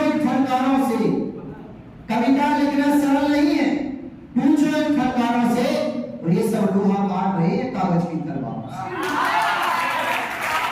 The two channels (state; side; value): identical; both; correlation 1.00